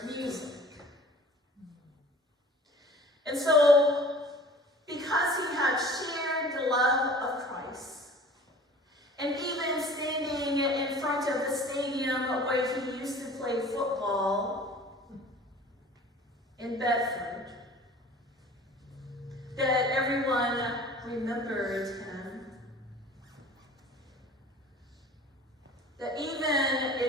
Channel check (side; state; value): both; normal; correlation 0.45